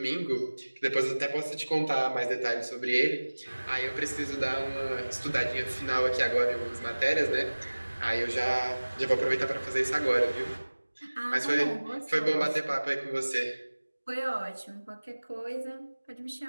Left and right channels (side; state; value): both; inverted; correlation -1.00